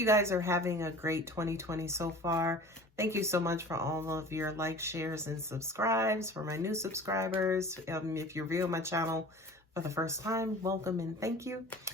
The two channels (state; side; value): normal; both; correlation 0.42